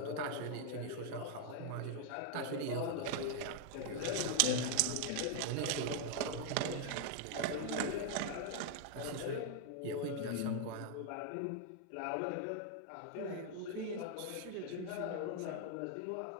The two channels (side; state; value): both; different; correlation 0.00